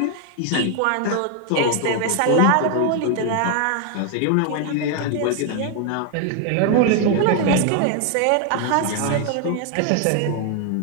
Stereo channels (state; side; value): different; both; correlation 0.00